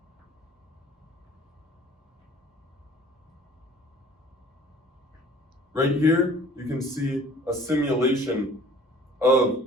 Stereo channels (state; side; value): normal; both; correlation 0.50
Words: Right here, you can see a simulation of